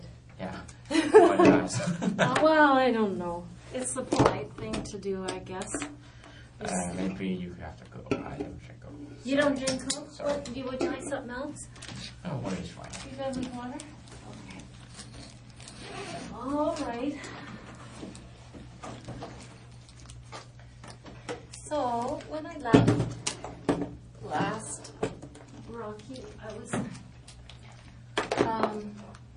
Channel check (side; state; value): both; identical; correlation 1.00